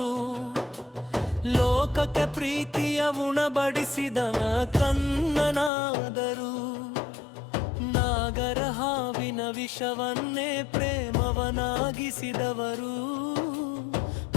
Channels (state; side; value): drops out; right; at 5.7 s